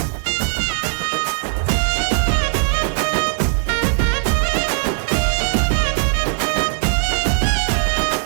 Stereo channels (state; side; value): silent; left; digital silence